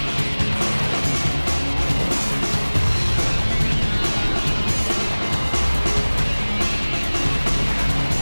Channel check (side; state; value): both; inverted; correlation -1.00